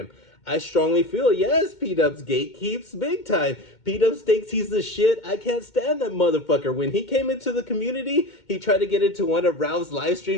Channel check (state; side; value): late; right; 2.2 ms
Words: I strongly feel, yes, P-Dubs gatekeeps big time. P-Dubs thinks he's the shit. I can't stand that motherfucker. When he came into the community, he tried to get into one of Ralph's live